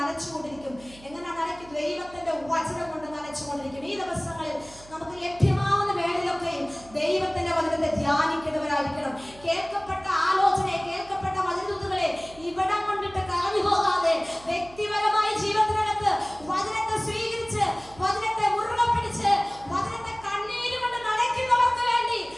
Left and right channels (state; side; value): noise; right; hum, 22 dB below the sound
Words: എങ്ങനെ നനയ്ക്കും? ദൈവത്തിന്റെ വചനം കൊണ്ട് നനച്ചുകൊണ്ടിരിക്കും. ഈ ദിവസങ്ങളിൽ നമുക്ക് ലഭ്യമാവുന്ന വേളയിലൊക്കെയും ദൈവത്തിന്റെ വചനത്തെ ധ്യാനിക്കുന്നവരായിരിക്കണം. കേൾക്കപ്പെട്ട ആലോചനയെ, കേൾക്കപ്പെട്ട വചനദൂതുകളെ ഇവിടം കൊണ്ടിട്ട് കളഞ്ഞു പോകാതെ വ്യക്തിപരമായ ജീവിതത്തിനകത്ത് വചനത്തെ സ്വീകരിച്ച്, വചനത്തെ മുറുകെ പിടിച്ച്, വചനത്തെ കണ്ണീരുകൊണ്ട് നനയ്ക്കുന്നവർക്ക് വേണ്ടി